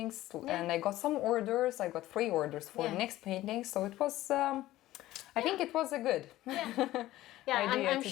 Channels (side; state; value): right; quieter; 15.7 dB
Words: and I got some orders. I got 3 orders for next painting. So it was, I think it was a good idea I'm to